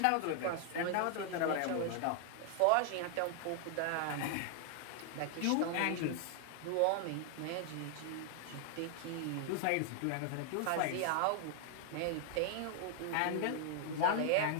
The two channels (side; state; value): both; different; correlation 0.00